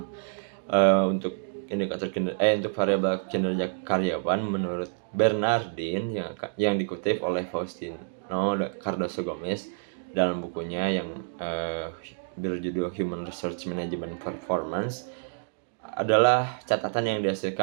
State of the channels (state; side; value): silent; left; digital silence